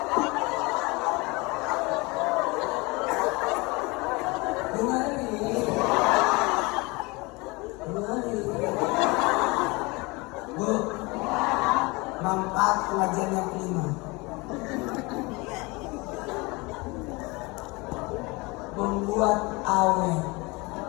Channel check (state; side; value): quieter; right; 25.4 dB